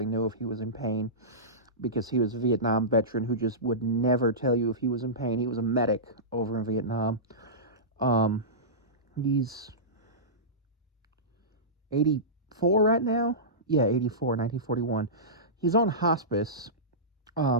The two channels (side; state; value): both; normal; correlation -0.19